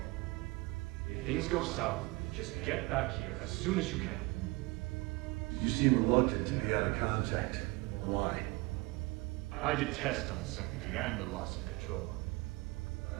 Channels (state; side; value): quieter; left; 23.8 dB